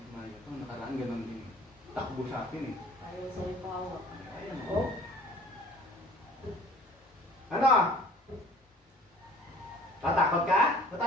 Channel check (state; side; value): normal; both; correlation 0.50